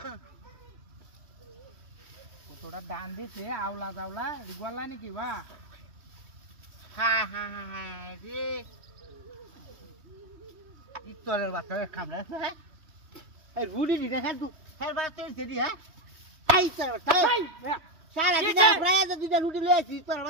কতটা দান দিছে আওলা জাওলা ইগওয়ালা নাকি বা হ্যাঁ হ্যাঁ হ্যাঁ রে ইতরের বাচ্চা কামড়া হ্যাঁ এই রুডি দি দেখা তু ফের বাচ্চা সেদি হ্যাঁ এই তোর বাচ্চা সারা দিন প্রায় দুইটা রুটি লয়ে আছি তোর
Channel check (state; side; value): late; left; 3.2 ms